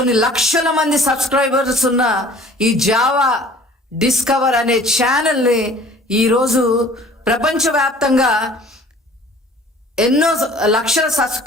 లక్షల మంది సబ్స్క్రైబర్స్ ఉన్న ఈ జావా డిస్కవర్ అనే ఛానల్ని ఈరోజు ప్రపంచవ్యాప్తంగా ఎన్నో లక్షల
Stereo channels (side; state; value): both; normal; correlation 0.50